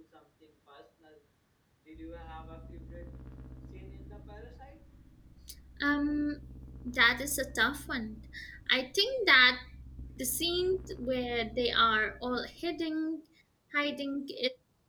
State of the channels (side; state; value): both; identical; correlation 1.00